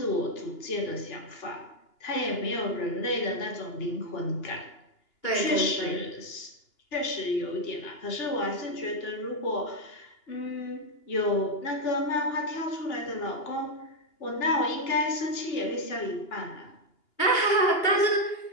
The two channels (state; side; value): late; right; 2.8 ms